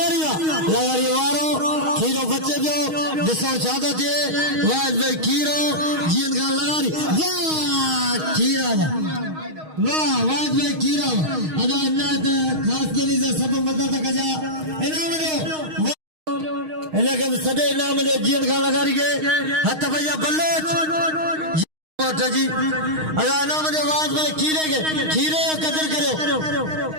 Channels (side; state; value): left; late; 6.4 ms